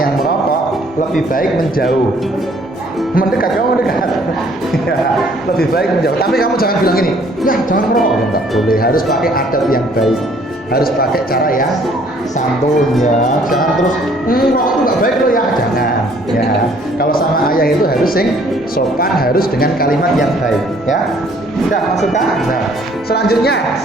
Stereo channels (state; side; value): normal; both; correlation 0.60